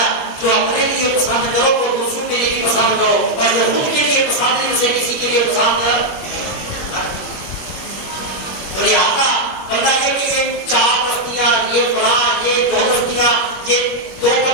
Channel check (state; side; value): late; right; 21 ms